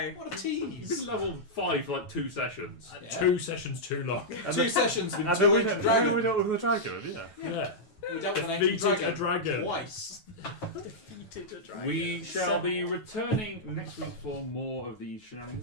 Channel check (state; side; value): late; right; 9.3 ms